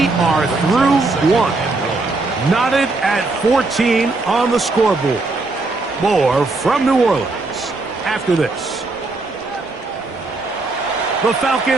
are through 1. Knotted at 14 on the scoreboard. More from New Orleans after this. The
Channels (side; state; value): left; quieter; 3.4 dB